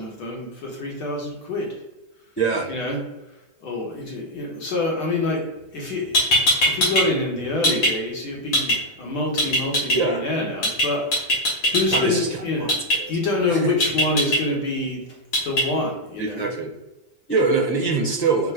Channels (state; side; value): late; right; 6.9 ms